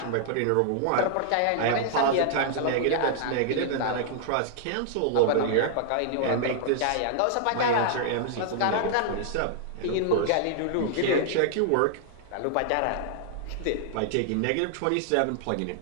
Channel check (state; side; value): different; both; correlation -0.01